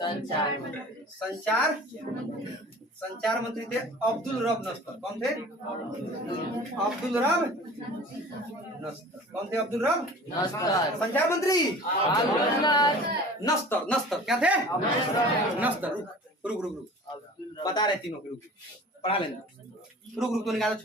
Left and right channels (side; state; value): both; normal; correlation 0.42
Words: संचार, संचार मंत्री थे अब्दुल रब नस्तर। कौन थे? अब्दुल रब नस्तर। कौन थे? अब्दुल रब नस्तर। संचार मंत्री नस्तर। नस्तर क्या थे? नस्तर। रुक रुक रुक रुक, बता रहे तीनों के। रुक पढ़ा लेना। रुक रुक तो निकाल